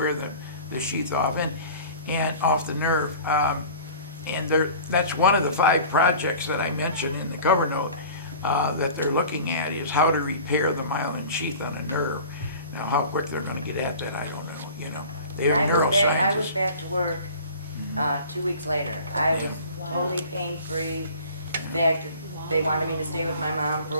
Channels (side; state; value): both; inverted; correlation -0.42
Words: the sheath off and off the nerve. And that's one of the 5 projects that I mentioned in the cover note that they're looking at is how to repair the myelin sheath on a nerve. Now, how quick they're gonna get at that, I don't know, They're I was neuroscientists. back to work 2 weeks later. I was totally pain-free. In fact, they wanted me to stay with my mom for